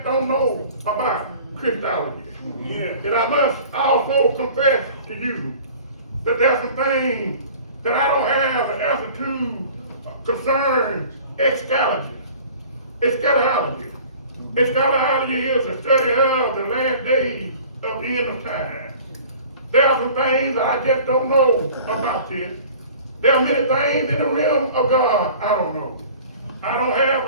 don't know about Christology. And I must also confess to you that there's some things that I don't have an answer to concerning eschatology. It's scholarly is a study of the last days of the end of time. There are some things that I just don't know about this. There are many things in the realm of God I don't know. I don't have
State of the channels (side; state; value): both; inverted; correlation -0.46